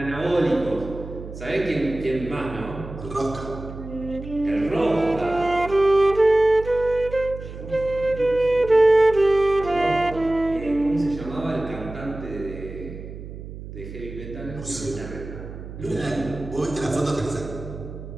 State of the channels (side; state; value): right; noise; hum, 12 dB below the sound